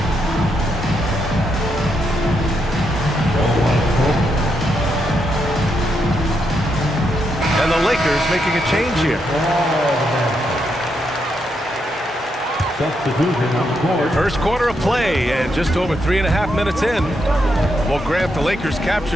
And the Lakers making a change here. First quarter of play and just over 3.5 minutes in. Well, Grant, the Lakers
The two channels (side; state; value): both; normal; correlation 0.80